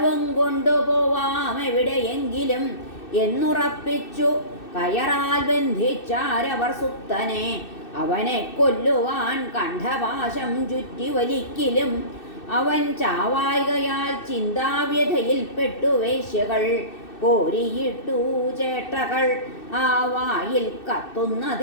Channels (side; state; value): right; late; 2.6 ms